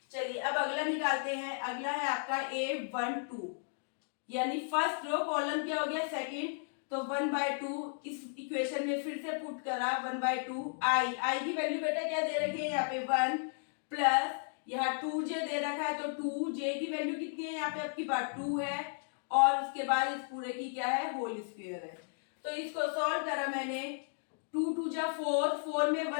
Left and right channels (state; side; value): silent; right; digital silence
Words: चलिए अब अगला निकालते हैं। अगला है आपका A12, यानी फर्स्ट रो कॉलम क्या हो गया सेकंड, तो 1/2 इस इक्वेशन में फिर से पुट करा 1/2 आई की वैल्यू बेटा क्या दे रखी है यहाँ पे 1 प्लस यहाँ 2j दे रखा है, तो 2j की वैल्यू कितनी है यहाँ पे आपकी बात 2 है, और उसके बाद इस पूरे की क्या है होल स्क्वायर है। तो इसको सॉल्व करा मैंने, 2 2 जा 4 में